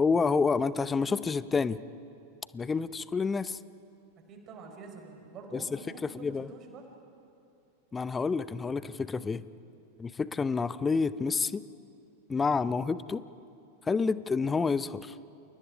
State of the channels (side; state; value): right; quieter; 4.4 dB